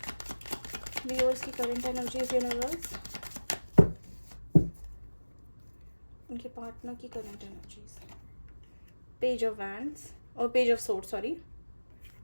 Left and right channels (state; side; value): inverted; both; correlation -1.00